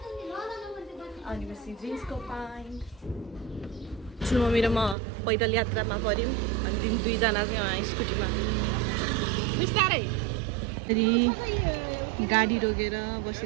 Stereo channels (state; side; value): drops out; left; at 5.0 s